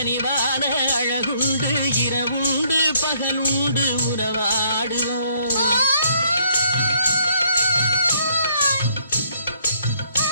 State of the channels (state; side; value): inverted; both; correlation -0.66